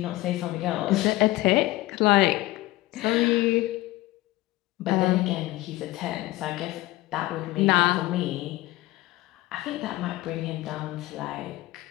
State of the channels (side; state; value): right; quieter; 18.6 dB